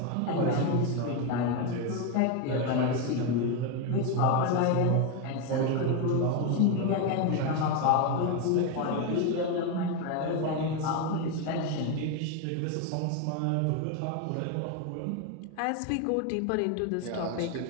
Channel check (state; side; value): different; both; correlation 0.02